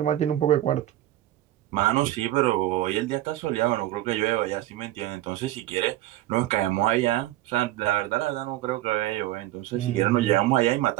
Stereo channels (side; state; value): left; quieter; 14.8 dB